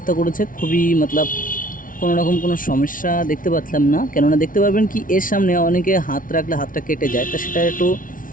করেছে, খুবই মতলব কোনো রকম কোনো সমস্যা দেখতে পাচ্ছিলাম না। কেননা দেখতে পারবেন কি এর সামনে অনেকে হাত রাখলে হাতটা কেটে যায়, তা সেটা একটু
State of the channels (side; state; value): right; late; 0.39 ms